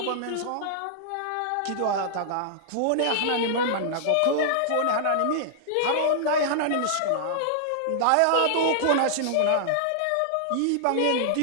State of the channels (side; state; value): both; different; correlation -0.01